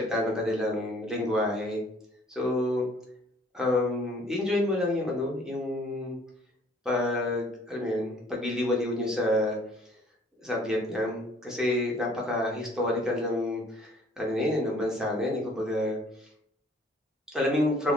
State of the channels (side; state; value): both; normal; correlation 0.57